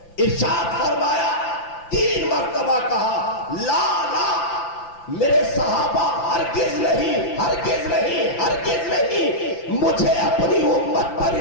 इरशाद फरमाया, 3 मरतबा कहा, ला ला मेरे सहाबा, हरगिज नहीं, हरगिज नहीं, हरगिज नहीं। मुझे अपनी उम्मत पर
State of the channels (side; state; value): right; late; 5.9 ms